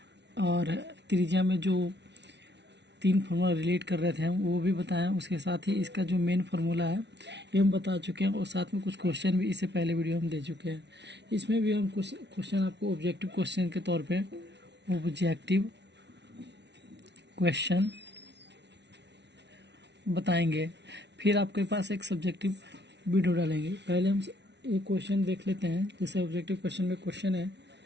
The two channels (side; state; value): left; late; 0.50 ms